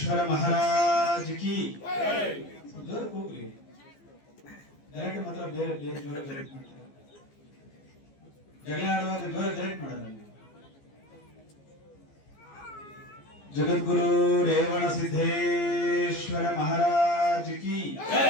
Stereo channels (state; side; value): late; right; 14 ms